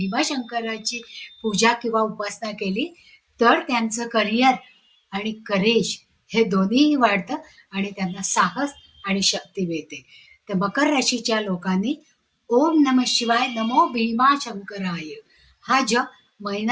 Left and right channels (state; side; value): identical; both; correlation 1.00